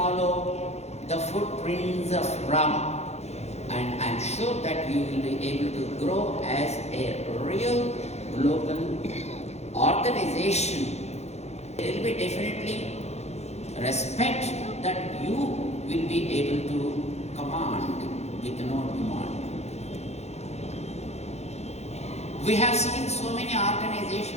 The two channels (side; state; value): right; late; 0.31 ms